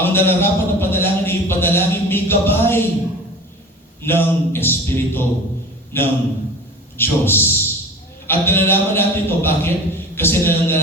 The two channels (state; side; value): normal; both; correlation 0.38